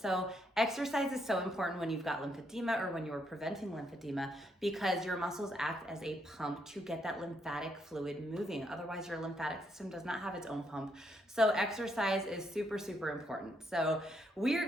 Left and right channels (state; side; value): normal; both; correlation 0.76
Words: exercise is so important when you've got lymphedema or when you're preventing lymphedema because your muscles act as a pump to get that lymphatic fluid moving. Otherwise, your lymphatic system does not have its own pump. So exercise is super, super important. So we are